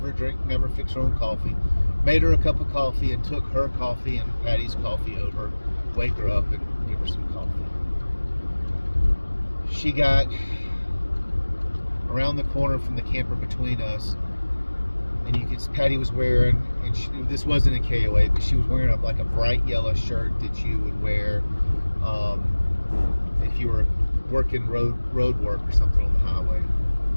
fix her own coffee. Made her a cup of coffee and took her coffee and Patty's coffee over, wake her up and give her some coffee. She got around the corner from the camper between us, and Patty was wearing, and this wasn't a KOA, but she was wearing a bright yellow shirt that you would wear if you were working road work or something on the highway.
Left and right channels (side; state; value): both; inverted; correlation -1.00